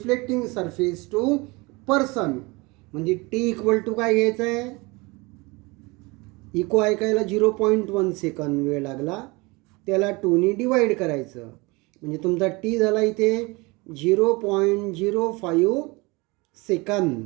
surface to person, म्हणजे टी इक्वल टू काय घ्यायचं आहे? इको ऐकायला 0.1 सेकंद वेळ लागला, त्याला 2ने डिवाईड करायचं म्हणजे तुमचा टी झाला इथे 0.05 second.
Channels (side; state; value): left; quieter; 25.3 dB